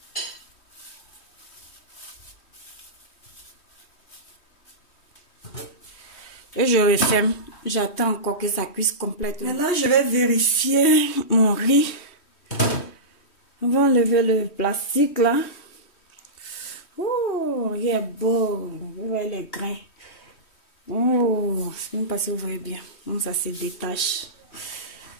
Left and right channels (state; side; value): late; right; 3.1 ms